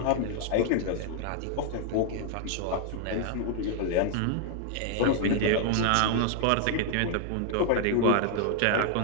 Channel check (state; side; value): different; both; correlation 0.00